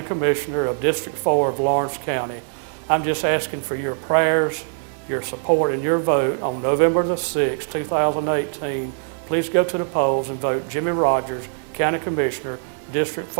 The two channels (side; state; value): left; silent; 64 dB below the other